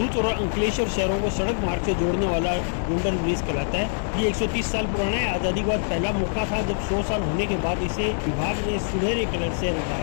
और अंकलेश्वर शहरों को सड़क मार्ग से जोड़ने वाला गोल्डन ब्रिज कहलाता है। ये 130 साल पुराना है। आज़ादी के बाद पहला मौका था जब 100 साल होने के बाद इसे विभाग ने सुनहरे कलर से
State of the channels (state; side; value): silent; right; 62 dB below the other